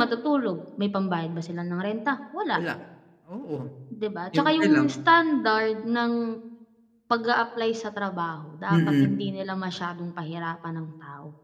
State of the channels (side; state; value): both; identical; correlation 1.00